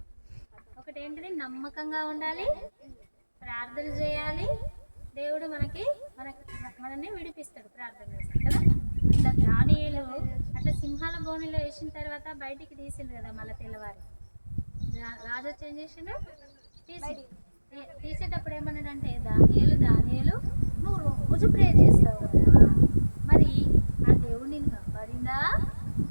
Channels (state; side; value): inverted; both; correlation -1.00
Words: ఒకటి ఏంటిది? నమ్మకంగా ఉండాలి, ప్రార్థన చేయాలి, దేవుడు మనల్ని విడిపిస్తాడు ప్రార్థన చేస్తాడు కదా. అట్లా దానియేలు అట్లా సింహాల బోనిలో వేసిన తర్వాత బయటికి తీసిండు కదా. మళ్ళీ తెల్లవారి రాజు వచ్చి ఏం చేసిండు? తీసేటప్పుడు ఏమన్నాడంటే, దానియేలు నువ్వు రోజు ప్రే చేస్తావు కదా, మరి ఆ దేవుడు నిన్ను కాపాడిందా